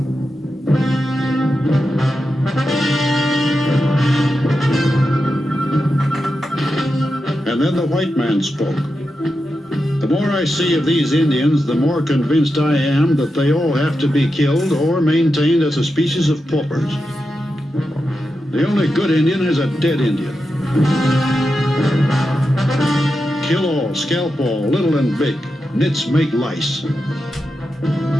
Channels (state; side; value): normal; both; correlation 0.89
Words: And then the white man spoke. The more I see of these Indians, the more convinced I am that they all have to be killed or maintained as a species of paupers. The only good Indian is a dead Indian. Kill all, scalp all, little and big. Nits make lice.